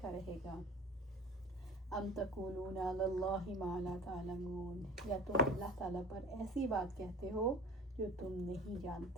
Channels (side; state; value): both; normal; correlation 0.40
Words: رہے گا۔ ام تقولون علی اللہ ما لا تعلمون، یا تم اللہ تعالیٰ پر ایسی بات کہتے ہو جو تم نہیں